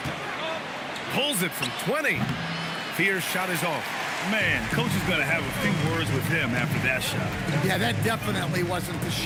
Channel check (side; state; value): both; identical; correlation 1.00